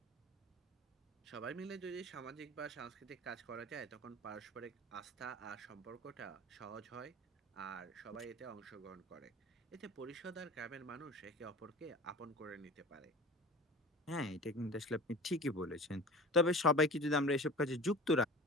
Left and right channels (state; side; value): normal; both; correlation 0.37